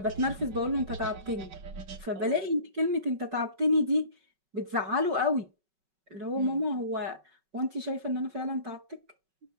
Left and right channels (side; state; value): left; late; 5.3 ms